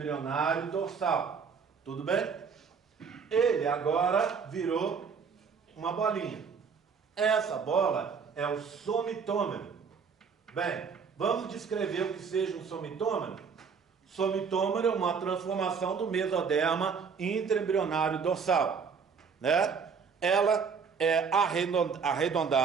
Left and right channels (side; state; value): left; quieter; 5.9 dB